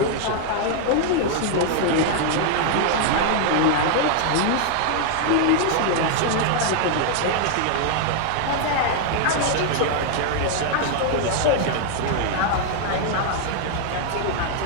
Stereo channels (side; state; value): both; different; correlation 0.00